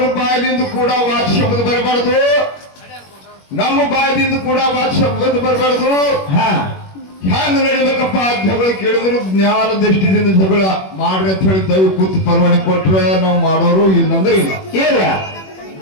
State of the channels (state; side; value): late; right; 21 ms